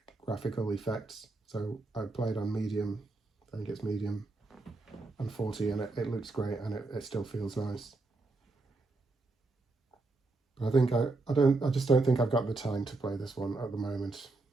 effects. So I played on medium, I think it's medium, and 40, and it looks great, and it still feels nice. But I think I just don't think I've got the time to play this one at the moment.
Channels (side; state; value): left; quieter; 3.4 dB